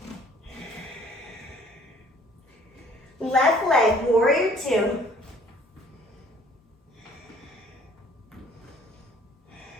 Left leg, warrior two.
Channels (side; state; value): both; normal; correlation 0.56